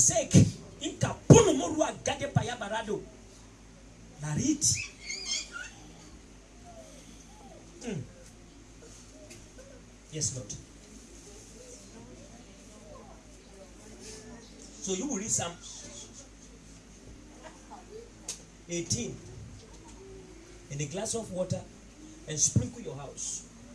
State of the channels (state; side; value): identical; both; correlation 1.00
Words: inka puno morua gade paya barado. Narit. Yes, Lord. So you will read Psalm 18 in a glass of water and sprinkle your house.